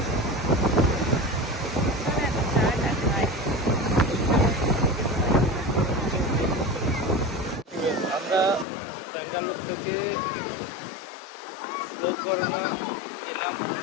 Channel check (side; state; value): right; drops out; at 8.7 s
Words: আমরা ব্যাঙ্গালোর থেকে গোকর্ণা গেলাম,